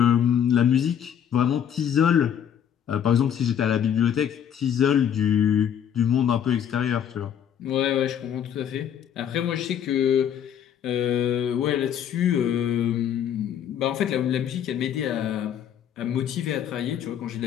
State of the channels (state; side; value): quieter; right; 9.1 dB